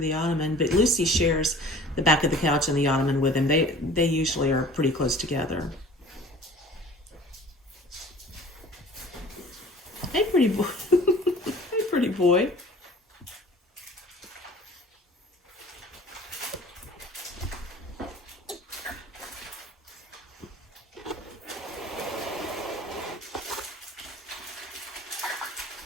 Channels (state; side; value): normal; both; correlation 0.46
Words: ottoman, but Lucy shares the back of the couch and the ottoman with him. They usually are pretty close together. Hey, pretty boy. Hey, pretty boy.